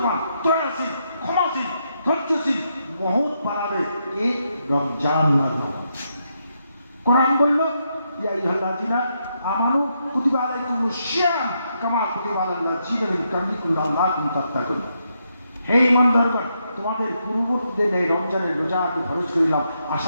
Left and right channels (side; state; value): both; inverted; correlation -0.80